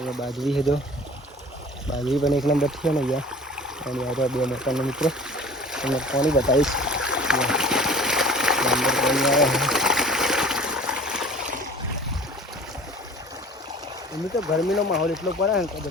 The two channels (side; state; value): both; normal; correlation 0.45